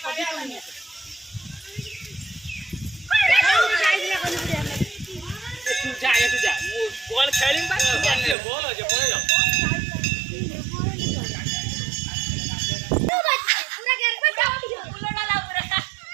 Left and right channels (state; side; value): drops out; left; at 8.3 s